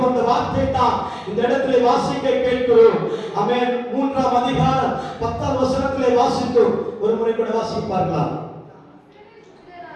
வந்த வார்த்தை தான் இந்த இடத்திலே வாசிக்க கேட்கிறோம். ஆமென். 3ஆம் அதிகாரம் 10ஆம் வசனத்திலே வாசித்தோம். ஒரு முறை கூட வாசிப்பார்களா?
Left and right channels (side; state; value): both; identical; correlation 1.00